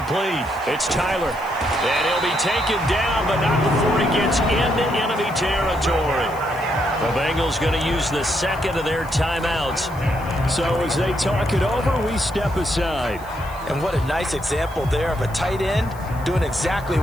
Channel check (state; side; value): noise; left; hiss, 23 dB below the sound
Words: It's Tyler. And he'll be taken down, but not before he gets into enemy territory. The Bengals going to use the second of their timeouts. So as they talk it over, we step aside. And what a nice example there of a tight end doing exactly